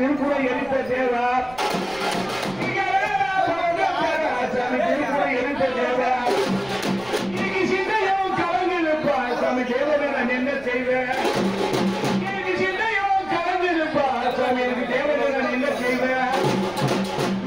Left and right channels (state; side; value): noise; right; rumble, 21 dB below the sound